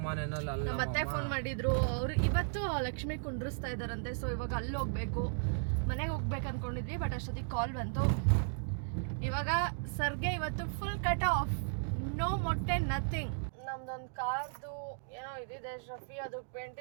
ಮನೆಯಲ್ಲಿ ಅಲ್ಲ, ನಮ್ಮ ಅತ್ತೆ ಫೋನ್ ಮಾಡಿದ್ರು. ಅವರು ಇವತ್ತು ಲಕ್ಷ್ಮಿ ಕುಂಡ್ರಿಸ್ತಾ ಇದ್ದಾರಂತೆ, ಸೊ ಇವಾಗ ಅಲ್ಲಿ ಹೋಗ್ಬೇಕು. ಮನೆಗೆ ಹೋಗ್ಬೇಕು ಅಂದ್ಕೊಂಡಿದ್ವಿ, ಬಟ್ ಅಷ್ಟೊತ್ತಿಗೆ ಕಾಲ್ ಬಂತು. ಇವಾಗ ಸರ್ಗೆ ಇವತ್ತು ಫುಲ್ ಕಟ್ ಆಫ್, ನೋ ಮೊಟ್ಟೆ, ನಥಿಂಗ್. ನಮ್ದೊಂದು ಕಾರ್ದು ಏನೋ ಇದಿದೆ, ಶಫಿ ಅದಕ್ಕೆ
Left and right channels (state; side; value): silent; left; digital silence